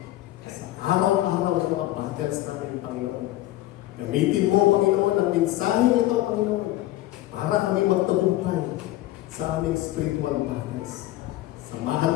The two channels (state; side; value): quieter; right; 15.6 dB